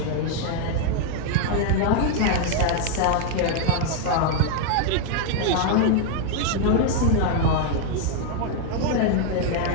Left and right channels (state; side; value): different; both; correlation 0.00